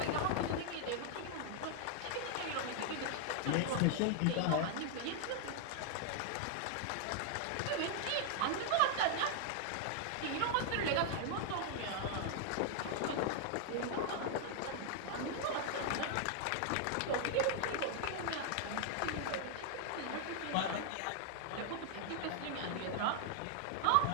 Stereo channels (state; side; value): different; both; correlation 0.00